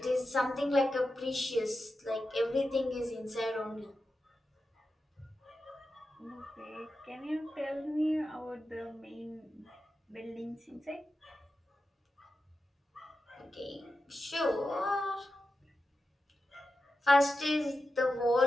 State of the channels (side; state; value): both; normal; correlation 0.91